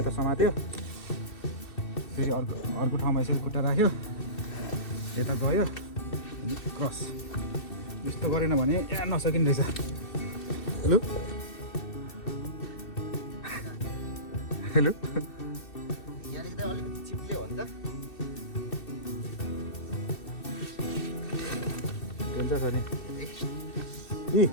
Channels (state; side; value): late; right; 2.6 ms